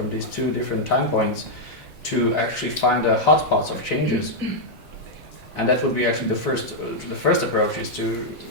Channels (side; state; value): both; normal; correlation -0.04